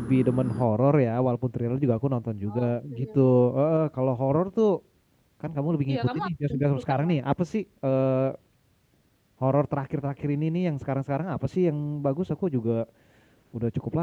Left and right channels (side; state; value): both; identical; correlation 1.00